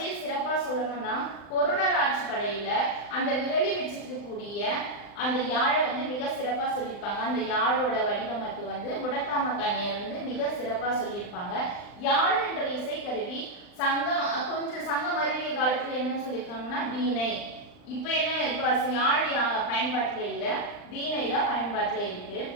சிறப்பா சொல்லணும்னா, பொருணர் ஆட்சி படையில அந்த விரலி வச்சிருக்கக்கூடிய அந்த யாழை மிக சிறப்பா சொல்லியிருப்பாங்க. அந்த யாழோட வடிவமைப்பு முடத்தாம கண்ணியர் மிக சிறப்பா சொல்லியிருப்பாங்க. யாழ் என்ற இசைக்கருவி கொஞ்சம் சங்கம் அறிவிய காலத்துல என்னன்னு சொல்லியிருக்காங்கன்னா வீணை. இப்ப என்ன, இப்ப யாழ் பயன்பாட்டுல இல்ல, வீணை தான் பயன்பாட்டுல இருக்கு.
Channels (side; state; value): right; late; 39 ms